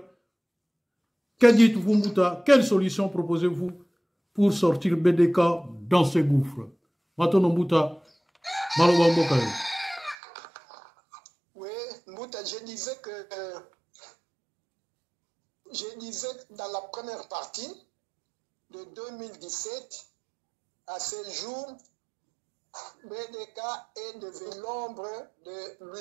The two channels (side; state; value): left; drops out; at 10.2 s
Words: que dites-vous, Mouta? Quelle solution proposez-vous pour sortir BDK dans ce gouffre? Maintenant, Mouta, Maloba Mbokaye. Oui, Mouta, je disais dans la première partie de 2017, à ce jour, BDK est devenu l'ombre de